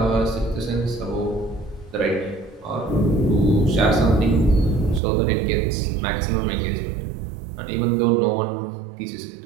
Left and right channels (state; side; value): drops out; left; at 5.0 s